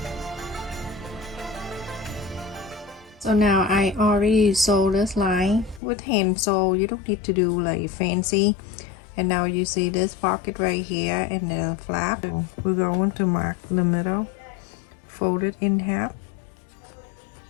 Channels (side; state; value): right; drops out; at 5.8 s